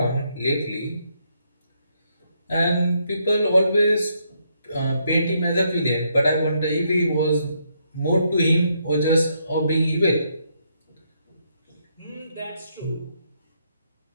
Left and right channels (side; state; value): both; inverted; correlation -0.75